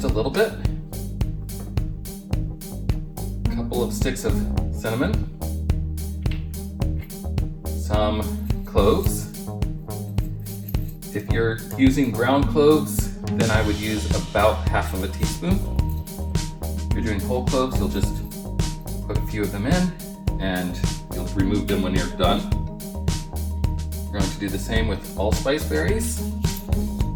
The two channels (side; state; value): both; identical; correlation 1.00